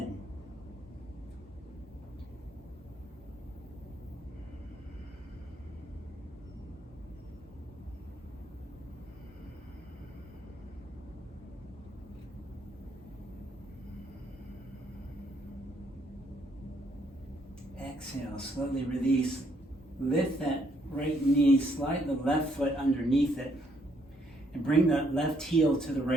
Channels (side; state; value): both; normal; correlation 0.71